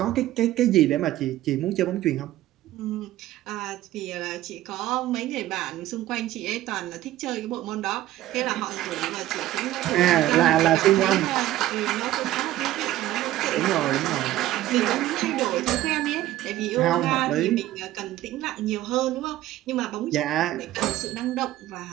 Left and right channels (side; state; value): left; quieter; 14.6 dB